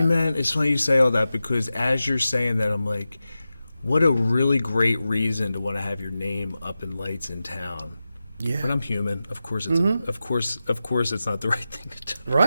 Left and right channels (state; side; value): inverted; both; correlation -0.93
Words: that. man? It's funny you say all that, because as you're saying that, I'm like, what a really great reason to want to have your name up in lights in town. Yeah. But I'm human. Of course, it's of course, it's not the right thing to do.